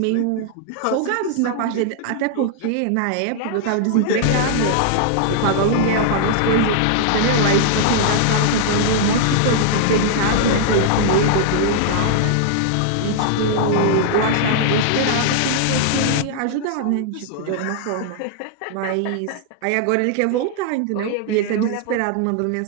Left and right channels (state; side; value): different; both; correlation -0.01